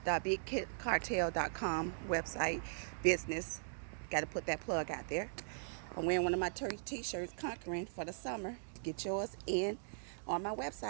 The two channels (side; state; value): left; silent; digital silence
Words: .bigcartel.com website business. Got to put that plug out there. I'm wearing one of my t-shirts, Conquering, for the summer. Get yours in on my